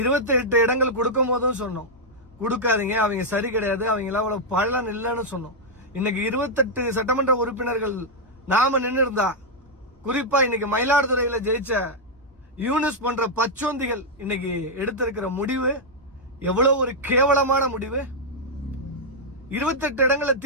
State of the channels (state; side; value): normal; both; correlation -0.04